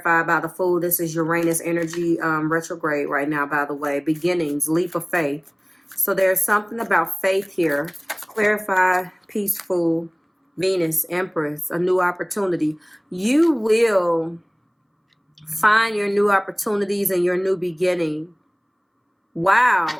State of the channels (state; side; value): identical; both; correlation 1.00